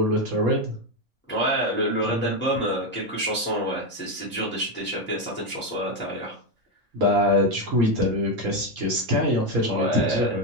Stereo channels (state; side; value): normal; both; correlation 0.09